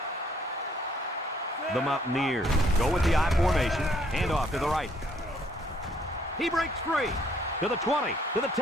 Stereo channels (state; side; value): normal; both; correlation 0.65